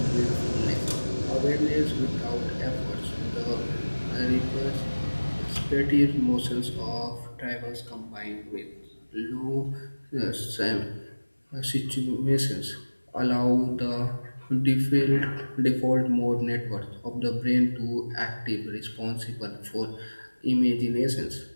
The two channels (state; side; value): inverted; both; correlation -1.00